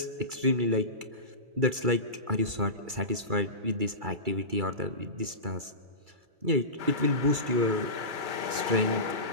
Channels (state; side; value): late; left; 2.3 ms